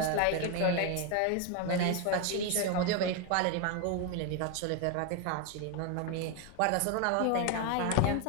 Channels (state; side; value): different; both; correlation 0.02